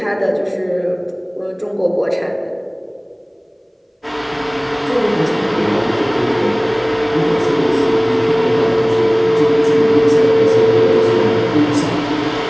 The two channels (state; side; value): identical; both; correlation 1.00